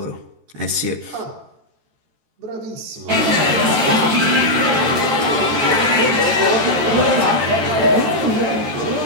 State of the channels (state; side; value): late; left; 14 ms